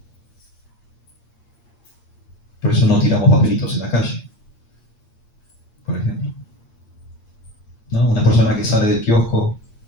Por eso no tiramos papelitos en la calle, por ejemplo. ¿No? Una persona que sale del kiosco,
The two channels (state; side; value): late; right; 8.6 ms